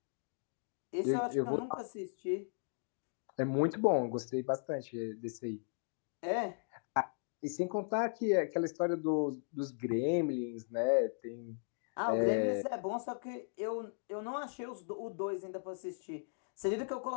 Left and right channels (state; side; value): silent; right; digital silence